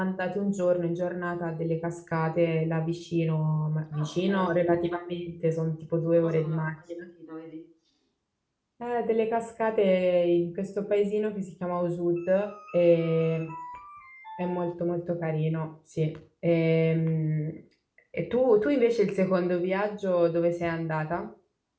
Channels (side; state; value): both; identical; correlation 1.00